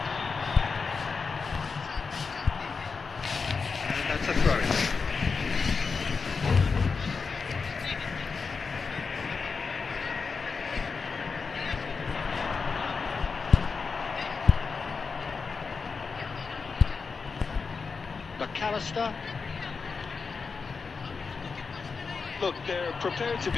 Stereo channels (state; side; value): quieter; right; 4.9 dB